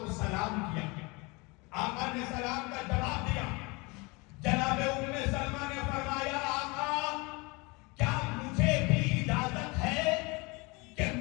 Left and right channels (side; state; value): right; quieter; 26.9 dB